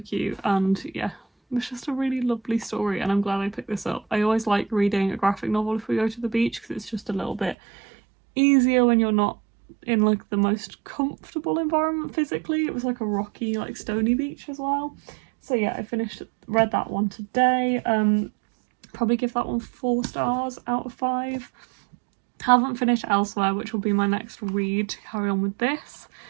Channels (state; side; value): drops out; left; at 7.6 s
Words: and yeah, it was just a really lovely story, and I'm glad I picked this up. I always like reading a graphic novel if we go to the beach, because it's just a little bit easier when you're not in like the most comfortable environment physically. It was like a rocky, like stony beach as well. So yeah, I read that one today. Probably give that one 4 stars out of 5. Haven't finished Elsewhere, which will be my next read to carry on with this,